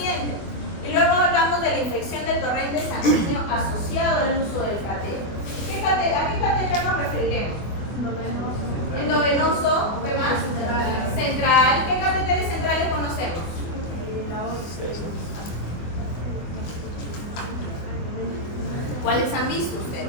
Y luego hablamos de la infección del torrente sanguíneo asociado al uso del catéter. ¿A qué catéter nos referiremos? Endovenoso, ¿qué más? Central. ¿Qué catéteres centrales conocemos? ¿Cuáles han visto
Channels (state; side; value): late; right; 24 ms